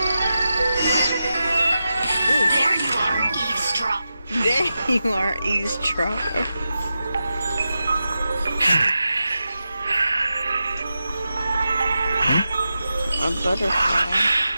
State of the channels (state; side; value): inverted; both; correlation -0.91